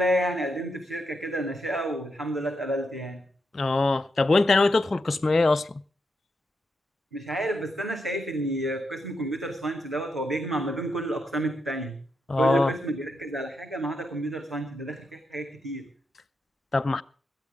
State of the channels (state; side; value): normal; both; correlation 0.84